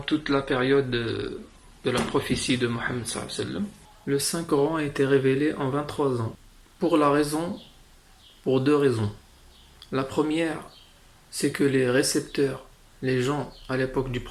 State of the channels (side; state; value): both; identical; correlation 1.00